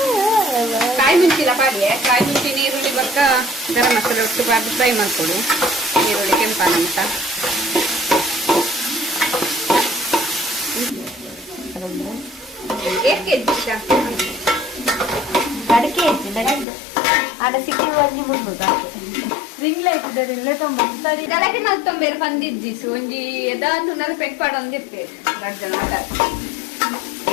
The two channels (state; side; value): drops out; right; at 16.7 s